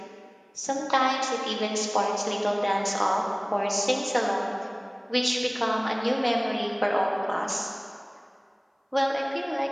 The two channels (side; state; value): both; identical; correlation 1.00